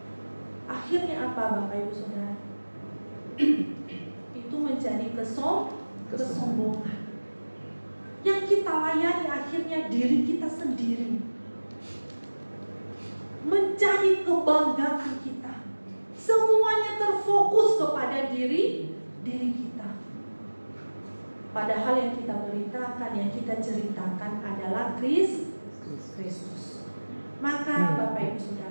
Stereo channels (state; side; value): inverted; both; correlation -1.00